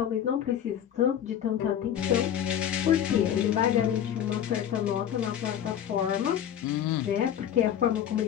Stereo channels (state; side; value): quieter; right; 9.9 dB